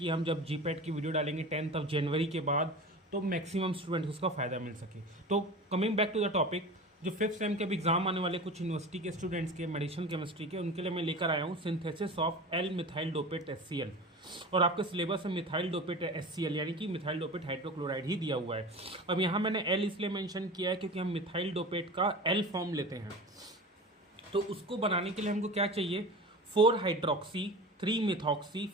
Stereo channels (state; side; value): normal; both; correlation 0.33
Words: हम जब जी पैट की वीडियो डालेंगे 10th जनवरी के बाद, तो मैक्सिमम स्टूडेंट उसका फ़ायदा मिल सके। तो coming back to the topic, जो फिफ्थ सेम के भी एग्जाम आने वाले कुछ यूनिवर्सिटी के स्टूडेंट्स के मेडिसिन केमिस्ट्री के, उनके लिए मैं लेकर आया हूँ synthesis of L methyl dopate HCl। और आपके सिलेबस में मिथाइल डोपेट HCl यानी कि मिथाइल डोपेट हाइड्रोक्लोराइड ही दिया हुआ है। अब यहाँ मैंने एल इसलिए मेंशन किया है क्योंकि हम मिथाइल डोपेट का एल फॉर्म लेते हैं। तो उसको बनाने के लिए हमको क्या चाहिए, 4 हाइड्रोक्सी 3 मिथॉक्सी